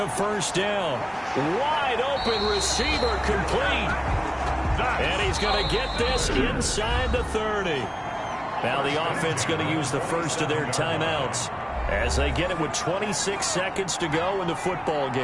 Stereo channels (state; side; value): identical; both; correlation 1.00